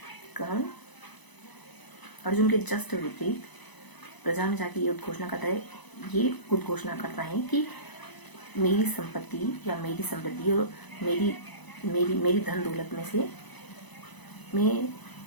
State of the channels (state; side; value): late; right; 1.0 ms